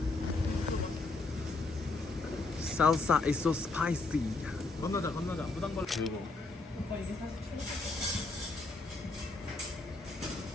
Salsa is so spicy. 건너자. 무당벌. 그리고.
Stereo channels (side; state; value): right; quieter; 3.4 dB